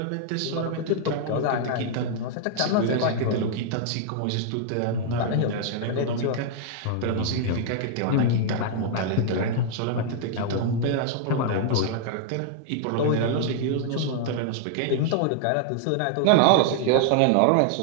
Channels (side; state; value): both; different; correlation -0.01